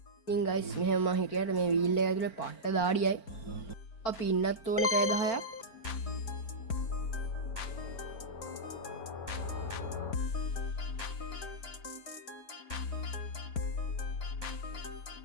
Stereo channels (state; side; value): late; right; 4.5 ms